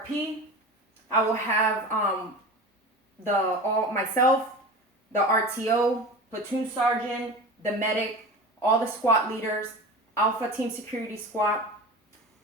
I will have myself, the RTO, platoon sergeant, the medic, all the squad leaders, Alpha Team Security Squad,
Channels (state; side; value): normal; both; correlation 0.32